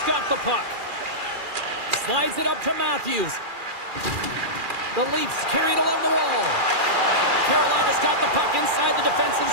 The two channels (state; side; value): late; left; 2.4 ms